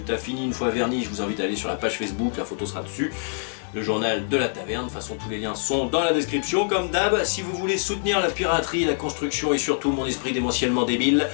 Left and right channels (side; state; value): right; silent; digital silence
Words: fini une fois verni, je vous invite à aller sur la page Facebook, la photo sera dessus. Le journal de la taverne, de toute façon tous les liens sont dans la description comme d'hab. Si vous voulez soutenir la piraterie, la construction et surtout mon esprit démentiellement débile,